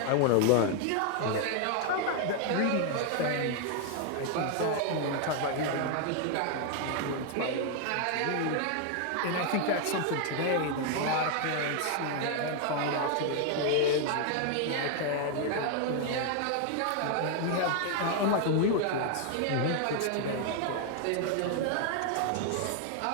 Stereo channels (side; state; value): both; different; correlation 0.00